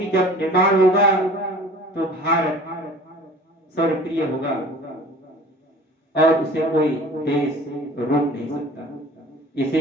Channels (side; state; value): both; normal; correlation 0.45